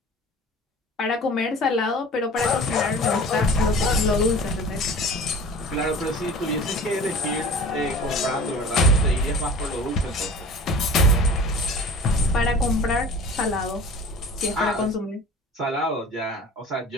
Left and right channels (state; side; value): normal; both; correlation 0.41